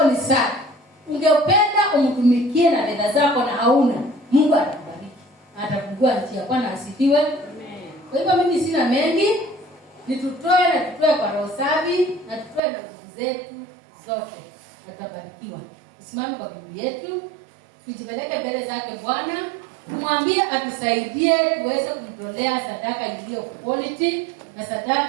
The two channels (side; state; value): left; drops out; at 12.6 s